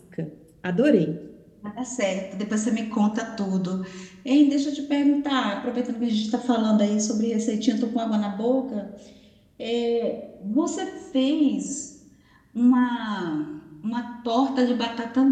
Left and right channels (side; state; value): both; identical; correlation 1.00